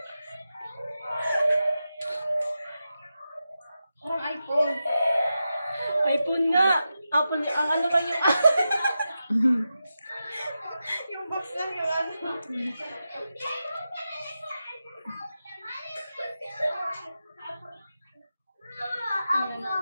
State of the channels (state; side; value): inverted; both; correlation -0.90